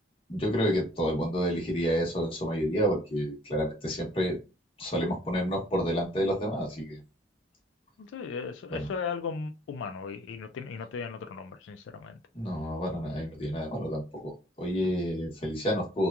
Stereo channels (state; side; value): normal; both; correlation 0.58